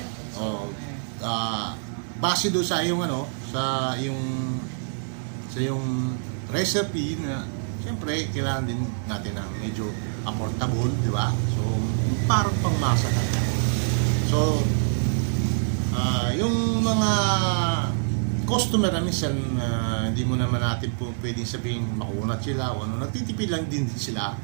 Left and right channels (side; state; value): left; silent; digital silence